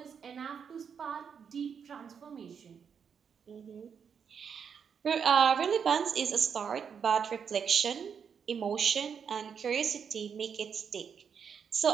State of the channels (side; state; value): left; quieter; 7.0 dB